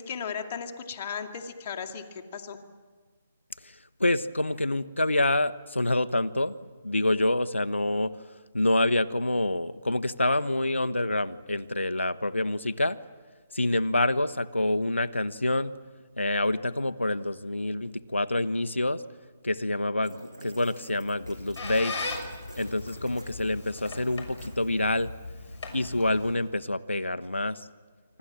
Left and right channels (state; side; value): inverted; both; correlation -0.87